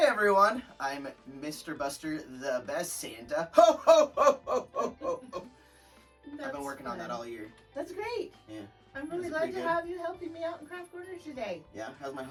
everyone, I'm Mr. Buster, the best Santa. Ho ho ho ho ho ho ho! I've That's been working on that fun. all year. That's great. Yeah. I'm really That's glad pretty to good. have you helping me out in Craft Corner today. Yeah, how's my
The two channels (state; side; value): identical; both; correlation 1.00